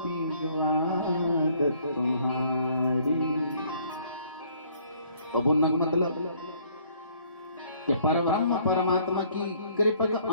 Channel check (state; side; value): inverted; both; correlation -0.62